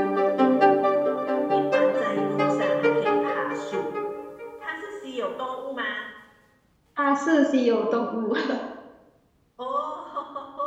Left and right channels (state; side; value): identical; both; correlation 1.00